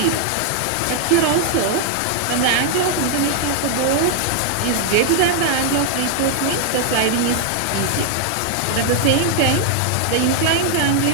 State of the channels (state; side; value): different; both; correlation 0.00